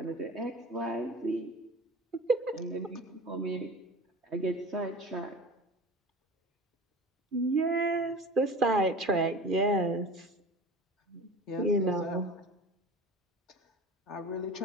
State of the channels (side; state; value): both; normal; correlation 0.35